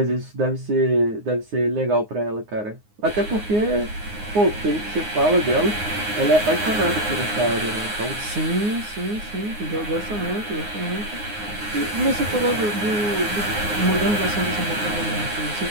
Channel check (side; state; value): left; late; 9.6 ms